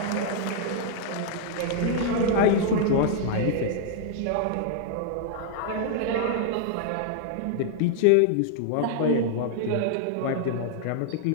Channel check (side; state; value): both; different; correlation 0.00